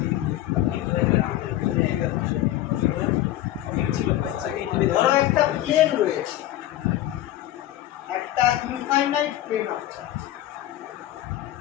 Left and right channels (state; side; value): quieter; right; 13.8 dB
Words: ধরো একটা প্লেন রয়েছে একটা ইনফাইনাইট প্লেন অফ চার্জ